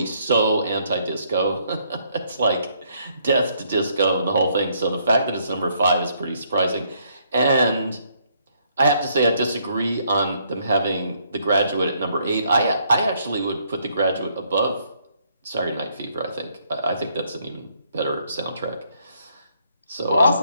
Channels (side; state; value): both; inverted; correlation -0.70